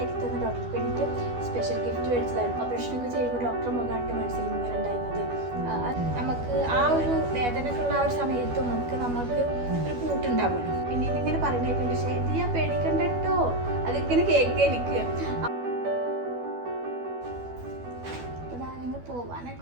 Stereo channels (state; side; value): late; left; 12 ms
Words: തന്ന ഡോക്ടർക്ക് വേണ്ടിയിട്ട് സ്പെഷ്യൽ ഗിഫ്റ്റ് മേടിച്ചതായിരുന്നു. ഓപ്പറേഷനൊക്കെ ചെയ്യുമ്പോൾ ഡോക്ടർ മുഖാണ്ട് മനസ്സിൽ ഇങ്ങനെ ഉണ്ടായിരുന്നത്. നമുക്ക് ആ ഒരു വേദനക്കുള്ള ആ ഒരു സമയത്തും നമുക്ക് ഒരു കൂട്ടുണ്ടാവുമല്ലോ. പിന്നീട് ഇങ്ങനെ പറയുന്നേക്കുണ്ട്, പക്ഷേ ഇത് ഞാൻ പേടിക്കണ്ട കേട്ടോ, അതിങ്ങനെ കേൾക്കുക എനിക്ക്.